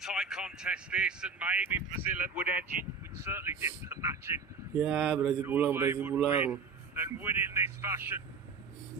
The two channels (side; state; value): left; quieter; 5.0 dB